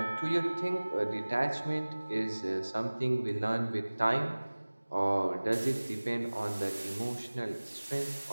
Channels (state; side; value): inverted; both; correlation -1.00